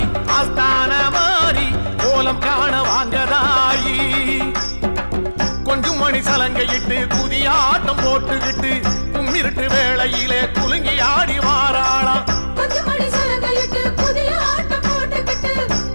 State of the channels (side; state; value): both; inverted; correlation -1.00